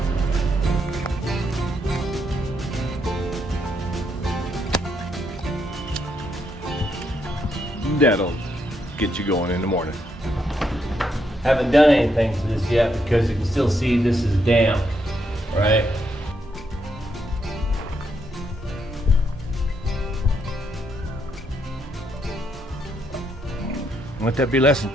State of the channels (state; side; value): normal; both; correlation 0.77